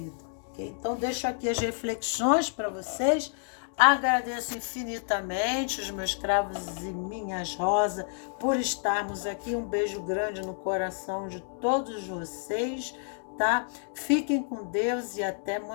Okay? Então, deixo aqui as reflexões para vocês. Agradeço infinitamente os meus cravos e minhas rosas por estarmos aqui. Um beijo grande no coração de todos vocês, tá? Fiquem com Deus e até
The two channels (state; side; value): silent; right; 57 dB below the other